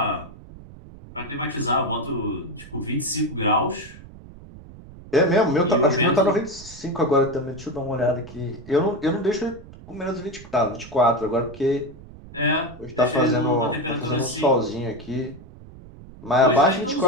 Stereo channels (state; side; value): noise; right; rumble, 18 dB below the sound